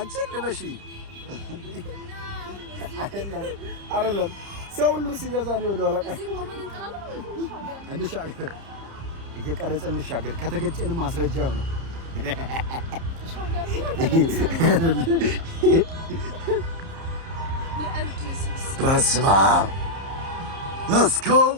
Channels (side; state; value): left; late; 30 ms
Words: ልበሺ አይደለም ሰው ሁሉ ሲገዛ ነው ወደ ኋላ እንሻገር እየቀረጸ እንሻገር ከተገጨን ማስረጃው ነው በስመ አብ let's go